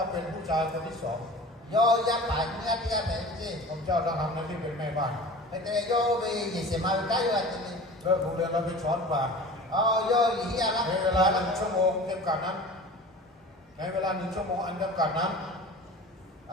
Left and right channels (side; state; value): both; normal; correlation 0.38